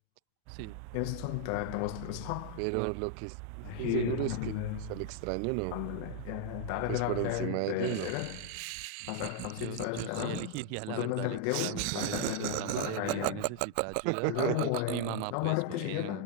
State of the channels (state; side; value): different; both; correlation 0.00